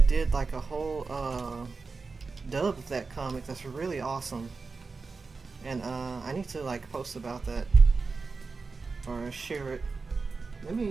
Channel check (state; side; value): quieter; left; 4.3 dB